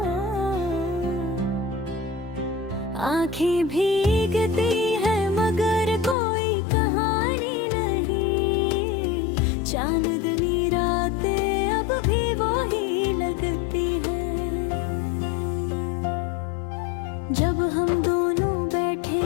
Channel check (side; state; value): right; drops out; at 6.2 s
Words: आँखें भीगती है मगर कोई कहानी नहीं। चांदनी रातें अब भी वही लगती है। जब हम दोनों बैठे